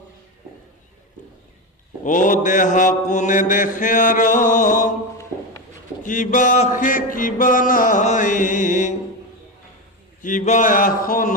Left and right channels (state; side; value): normal; both; correlation 0.16